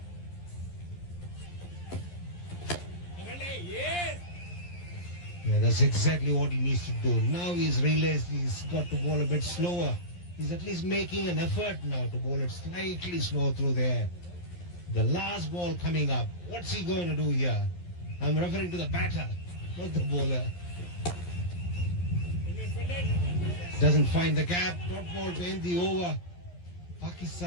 Yeah, that's exactly what he needs to do. Now he's realized he's got to bowl a bit slower. He's at least making an effort now to bowl it slightly slow through the air. The last ball coming up. What's he going to do here? I'm referring to the batter, not the bowler. Doesn't find the gap. Dot ball to end the over.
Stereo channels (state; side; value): late; right; 11 ms